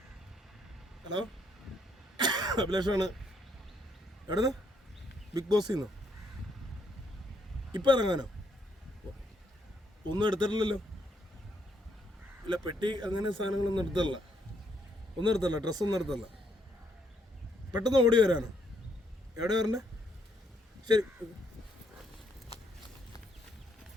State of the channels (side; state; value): both; normal; correlation 0.72